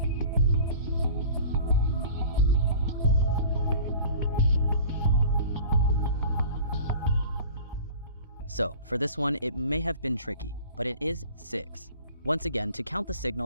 So, for this one, it may have been tricky, but it is 6. Once again, to count the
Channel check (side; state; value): both; inverted; correlation -0.43